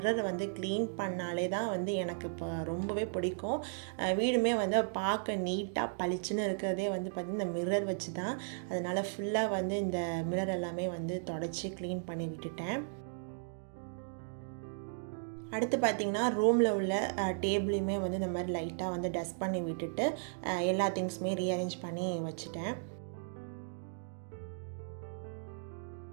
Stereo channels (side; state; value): left; silent; digital silence